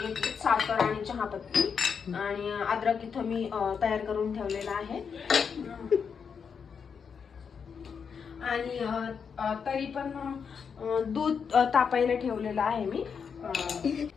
साखर आणि चहापत्ती आणि अद्रक इथं मी तयार करून ठेवलेला आहे. आणि तरी पण दूध तापायला ठेवलेलं आहे मी.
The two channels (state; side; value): quieter; right; 6.4 dB